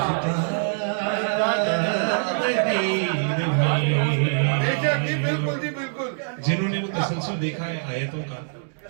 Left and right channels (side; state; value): left; silent; digital silence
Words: बिल्कुल जी बिल्कुल। जिन्होंने वो तसलसल देखा है आयतों का